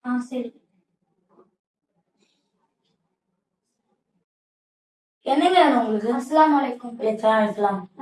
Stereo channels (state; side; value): identical; both; correlation 1.00